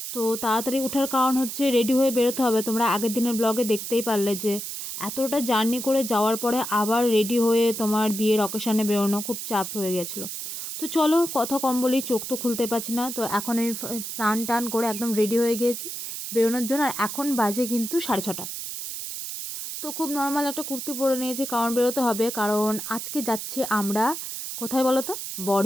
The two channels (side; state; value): right; noise; hiss, 6 dB below the sound